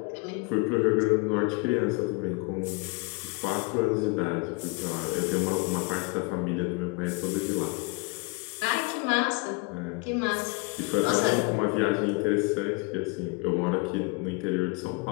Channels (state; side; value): quieter; right; 28.9 dB